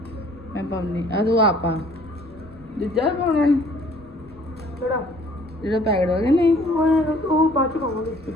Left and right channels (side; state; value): both; normal; correlation 0.56